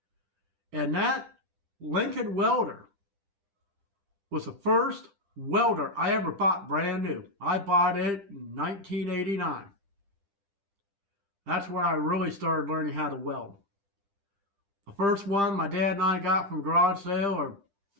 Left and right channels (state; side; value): late; left; 10 ms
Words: And that Lincoln welder was the first welder I ever bought brand new. I bought it in 1989. That's where I really started learning how to weld. The first one my dad and I got from a garage sale or